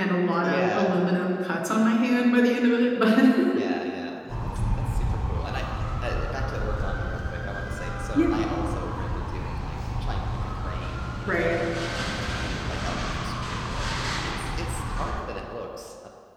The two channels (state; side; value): identical; both; correlation 1.00